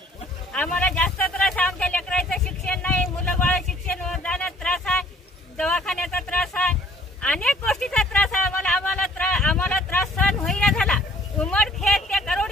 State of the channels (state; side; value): normal; both; correlation 0.57